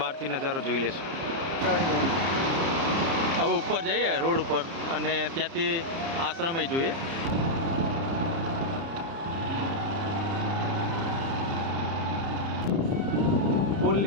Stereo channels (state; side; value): late; left; 30 ms